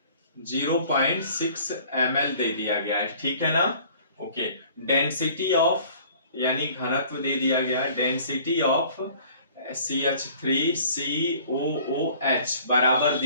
0.6 ml दे दिया गया है। ठीक है ना। ओके, डेंसिटी ऑफ यानी घनत्व दे दिया गया है, डेंसिटी ऑफ CH3COOH बराबर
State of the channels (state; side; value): inverted; both; correlation -0.52